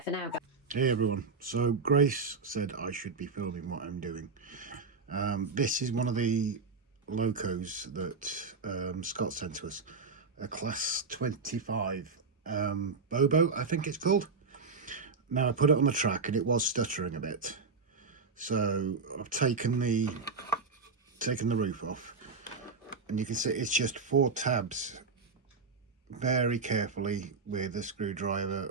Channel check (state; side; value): quieter; left; 4.6 dB